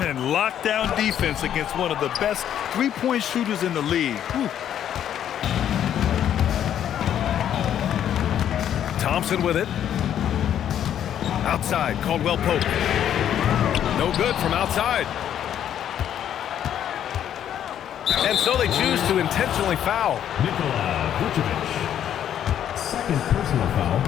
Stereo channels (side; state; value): right; quieter; 10.1 dB